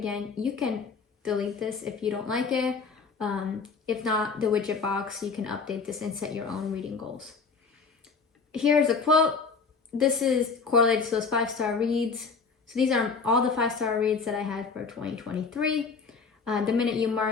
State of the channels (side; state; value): right; quieter; 5.0 dB